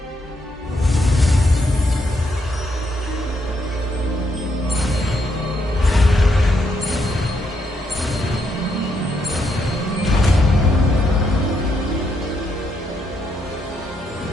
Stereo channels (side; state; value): both; normal; correlation 0.78